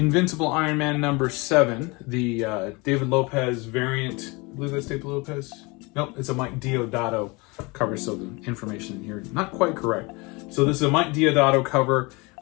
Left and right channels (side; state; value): right; quieter; 26.4 dB